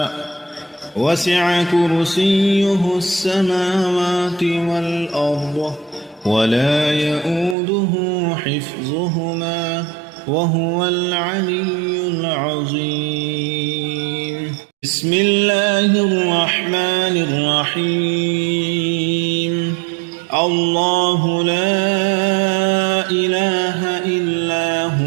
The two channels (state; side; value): drops out; left; at 7.6 s